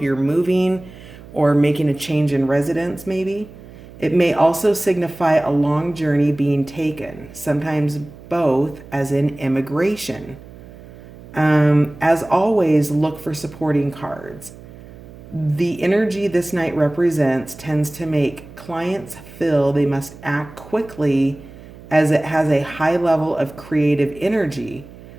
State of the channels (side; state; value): right; noise; hum, 18 dB below the sound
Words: moving or making a change in residence, maybe. It may also signify a long journey being taken, sometimes both, as in immigration. As always, look for supporting cards. The energy this Knight represents tends to make clients feel they must act quickly as it has a high level of creative energy,